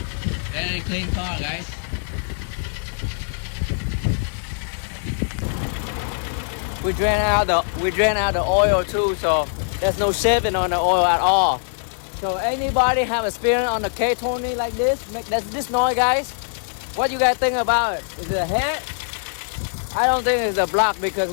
Very clean car, guys. We drain out the oil too, so there's no shaving on the oil at all. So anybody have experience on the K20 like this, make this noise, guys? What you guys think about it? Is it a head? I don't think it's a block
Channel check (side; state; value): right; silent; digital silence